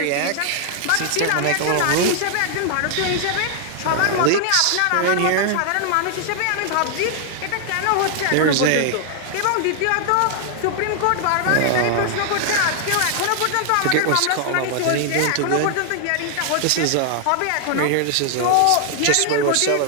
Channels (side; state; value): both; different; correlation 0.00